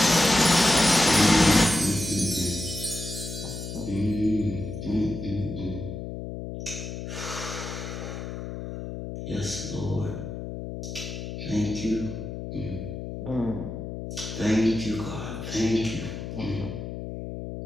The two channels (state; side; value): noise; left; hum, 7 dB below the sound